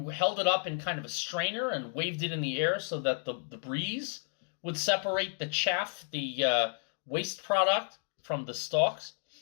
held it up in kind of a strainer and waved it in the air so that the breeze would separate the chaff, the waste product, from the stalks,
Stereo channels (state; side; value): silent; right; 56 dB below the other